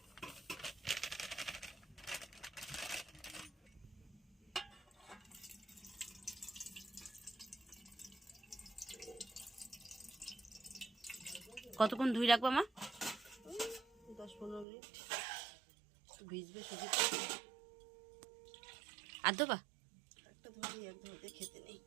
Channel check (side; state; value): left; drops out; at 14.7 s